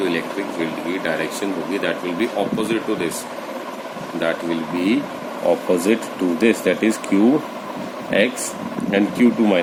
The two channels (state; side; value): identical; both; correlation 1.00